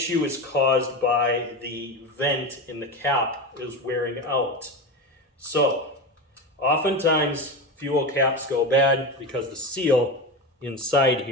is caused by the vent in the cap is wearing out. So, oftentimes fuel caps go bad because the seal inside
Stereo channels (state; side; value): normal; both; correlation 0.21